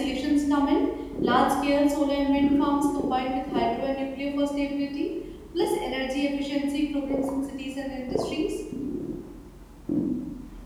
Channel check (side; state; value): both; identical; correlation 1.00